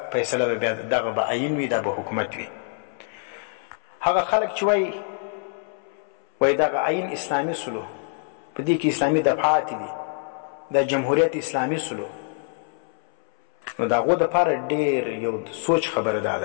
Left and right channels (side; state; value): right; silent; 62 dB below the other